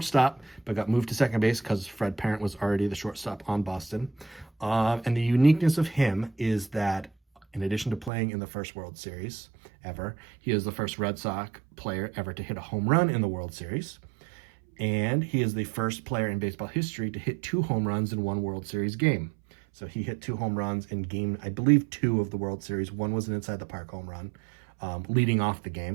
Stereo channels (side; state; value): left; drops out; at 8.1 s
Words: but got moved to second base because Fred Parent was already the shortstop on Boston. And the uniqueness of him is that, in addition to playing in the first World Series ever, he is the first Red Sox player ever to hit a home run in the World Series. And he is the first player in baseball history to hit 2 home runs in one World Series game. So he hit 2 home runs in game, I believe, 2 of the World Series. One was an inside the park home run, leading off the